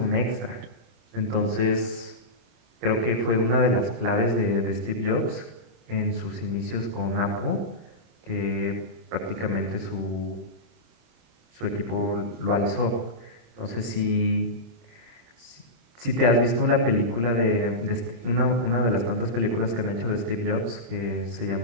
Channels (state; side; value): late; left; 26 ms